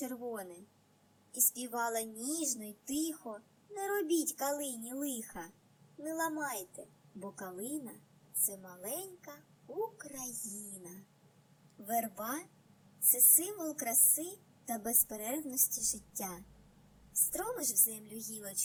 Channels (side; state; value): both; identical; correlation 1.00